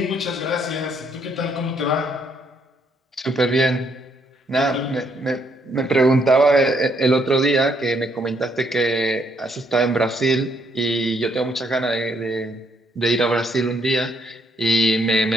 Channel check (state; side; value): normal; both; correlation 0.71